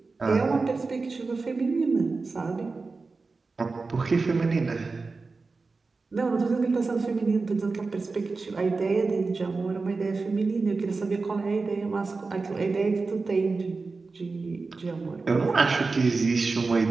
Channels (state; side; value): quieter; left; 4.0 dB